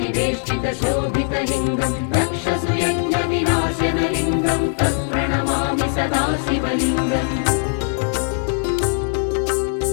दक्षसुयज्ञविनाशनलिङ्गं तत्प्रणमामि सदा शिवलिङ्गम्.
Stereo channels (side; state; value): right; silent; 55 dB below the other